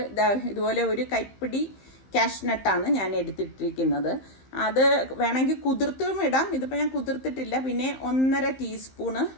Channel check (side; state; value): right; late; 15 ms